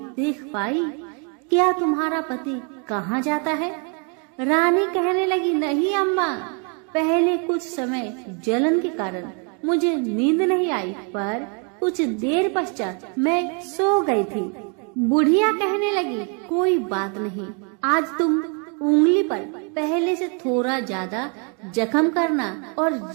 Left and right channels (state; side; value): quieter; left; 37.4 dB